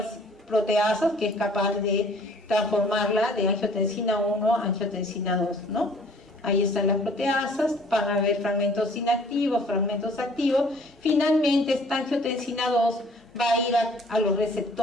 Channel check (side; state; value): both; normal; correlation 0.55